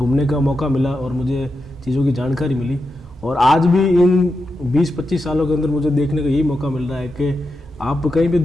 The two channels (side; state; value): both; normal; correlation 0.88